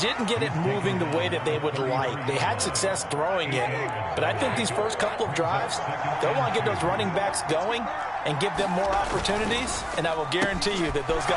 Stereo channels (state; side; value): identical; both; correlation 1.00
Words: get it moving the way that they would like. They had success throwing it, but I think these first couple of drives, they'll want to get those running backs going and give them more opportunities, and I will guarantee you that those